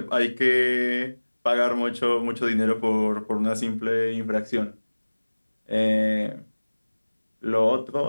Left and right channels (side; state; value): both; inverted; correlation -1.00